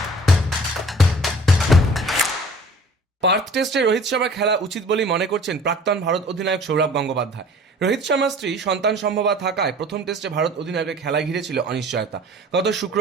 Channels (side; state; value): both; normal; correlation 0.48